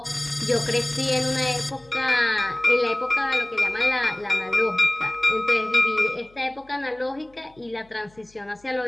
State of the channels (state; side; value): noise; left; hum, 30 dB below the sound